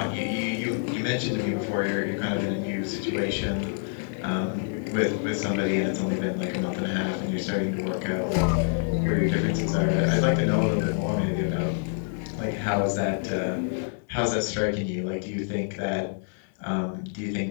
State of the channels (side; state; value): right; silent; digital silence